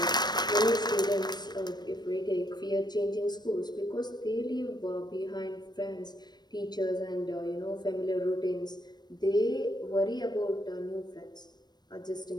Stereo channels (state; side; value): late; right; 0.20 ms